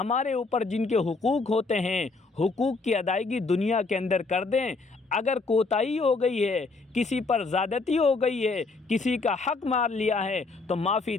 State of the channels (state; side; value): quieter; right; 3.9 dB